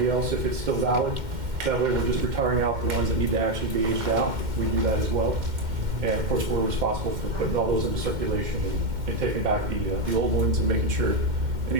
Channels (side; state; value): left; late; 2.1 ms